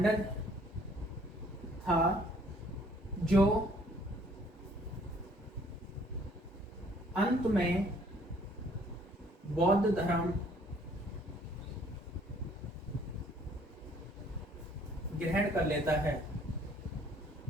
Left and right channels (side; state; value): both; normal; correlation 0.60